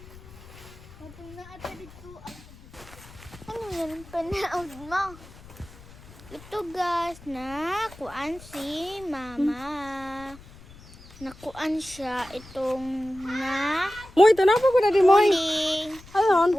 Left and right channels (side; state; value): left; noise; rumble, 20 dB below the sound